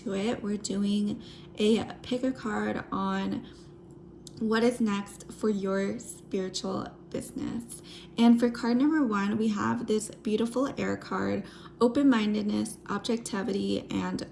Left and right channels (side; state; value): both; identical; correlation 1.00